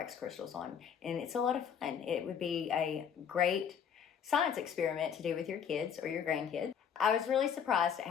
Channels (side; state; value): right; quieter; 7.8 dB